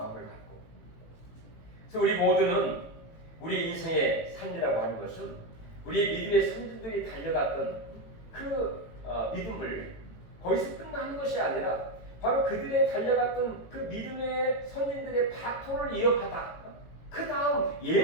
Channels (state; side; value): late; right; 18 ms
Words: 갖고, 그래서 우리 모두는 우리 인생의 삶이라고 하는 것은 우리 믿음의 선진들이 달려갔던 그 믿음을 거기서 끝나는 것이 아니라 바로 그들의 달려갔던 그 믿음의 선진들의 바토를 이어받아 그 다음